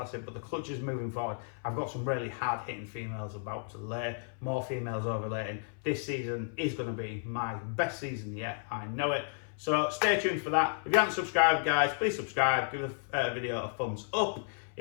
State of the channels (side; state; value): right; silent; 56 dB below the other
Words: but the clutches moving forward. I've got some really hard hitting females about to lay, more females overlaying. This season is going to be my best season yet, I know it. So stay tuned for that. If you haven't subscribed, guys, please subscribe, give the video a thumbs up.